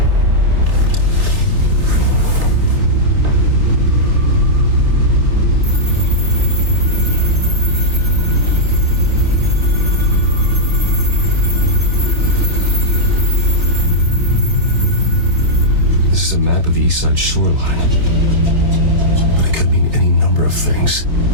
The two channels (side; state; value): left; late; 3.5 ms